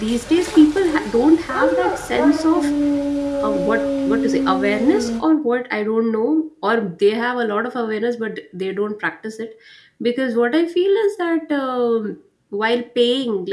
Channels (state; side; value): identical; both; correlation 1.00